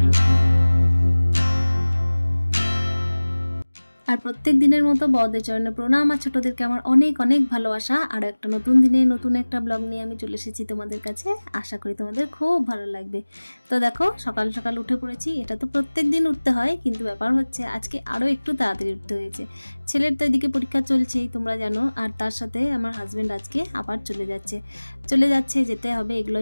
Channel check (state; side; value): inverted; both; correlation -1.00